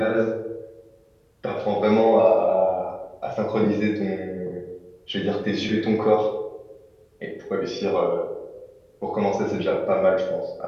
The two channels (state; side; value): identical; both; correlation 1.00